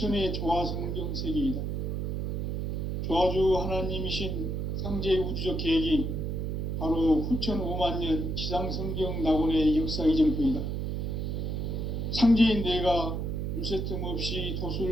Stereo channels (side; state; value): right; noise; hum, 2 dB below the sound